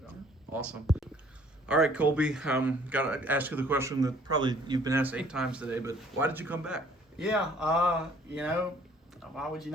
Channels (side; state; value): both; normal; correlation 0.58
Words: Yeah. Awesome. All right, Colby, got to ask you the question that probably you've been asked 8 times today, but why did you come back? Yeah, why would you